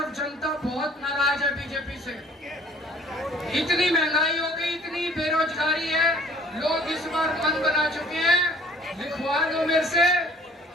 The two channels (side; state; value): both; normal; correlation 0.54